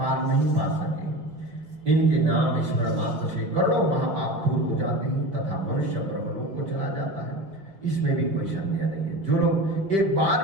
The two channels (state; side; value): late; left; 5.3 ms